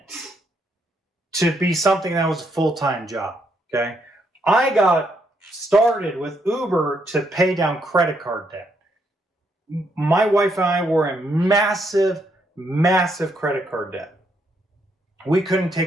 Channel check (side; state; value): both; normal; correlation 0.75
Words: to be something that was a full-time job, okay? I got started with Uber to pay down credit card debt. My wife and I were in massive credit card debt. We couldn't